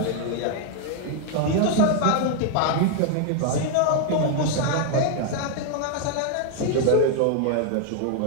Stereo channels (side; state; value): both; different; correlation 0.00